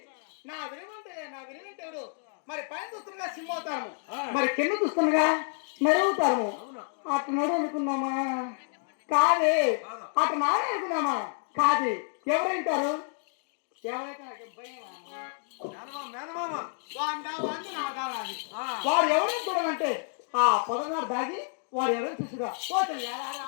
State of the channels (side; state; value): right; silent; 58 dB below the other